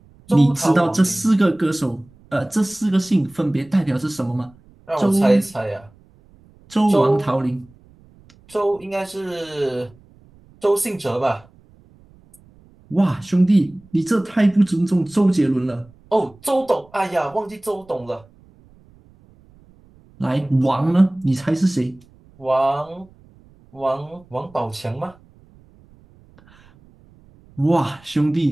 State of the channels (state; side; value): noise; right; rumble, 28 dB below the sound